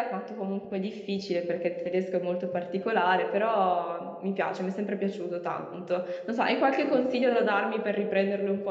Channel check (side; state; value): both; identical; correlation 1.00